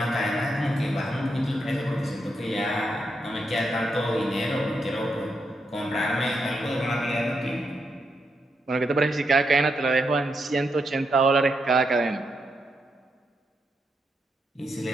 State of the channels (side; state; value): both; normal; correlation 0.82